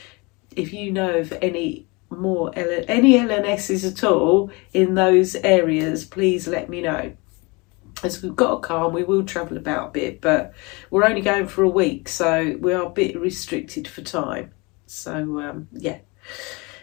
if you know of any L&S's at all in those areas, please let me know. As we've got a car and we will travel about a bit, but we're only going for a week, so we are a bit restricted for time. So yeah,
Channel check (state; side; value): quieter; right; 26.8 dB